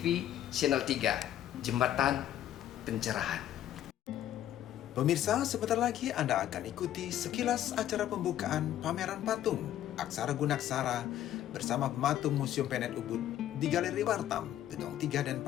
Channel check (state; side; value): quieter; right; 11.9 dB